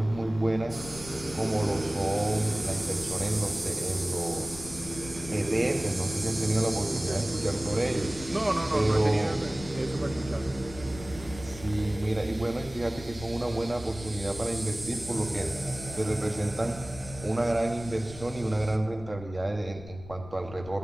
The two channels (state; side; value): noise; left; rumble, 15 dB below the sound